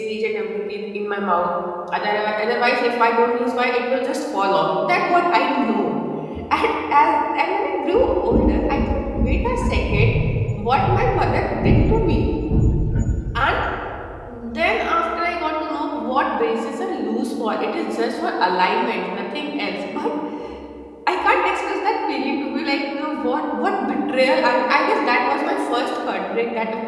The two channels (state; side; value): identical; both; correlation 1.00